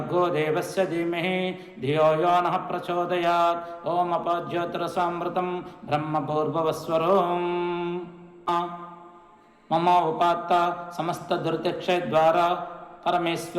देवस्य धीमहि धियो यो नः प्रचोदयात् ओं अपज्योतिरसामृतं ब्रह्मपूर्ववस्वरों मम उपात्त समस्त दुर्दक्षद्वारा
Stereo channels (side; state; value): both; identical; correlation 1.00